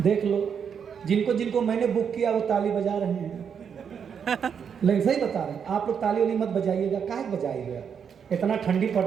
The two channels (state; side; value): quieter; left; 7.2 dB